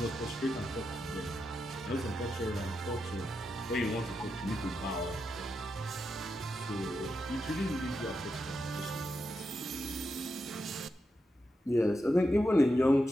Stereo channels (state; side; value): normal; both; correlation 0.86